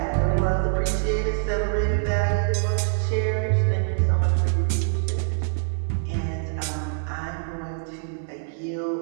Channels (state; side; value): silent; left; 62 dB below the other